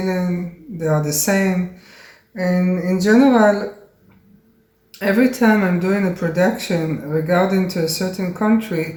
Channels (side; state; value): both; identical; correlation 1.00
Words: They are the same. And in general, every time I'm doing a production regarding to a certain